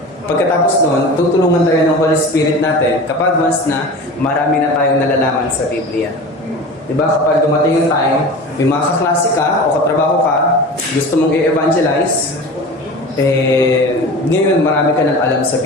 Pagkatapos noon, tutulungan tayo ng Holy Spirit natin kapag once na marami na tayong nalalaman sa Biblia. Diba? Kapag dumating yung time, may mga kaklase ka o katrabaho ka, gusto mong i-evangelize, ngayon marami ka nang alam sa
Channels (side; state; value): both; normal; correlation 0.34